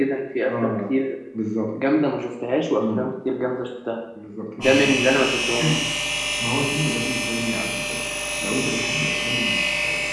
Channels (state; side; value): identical; both; correlation 1.00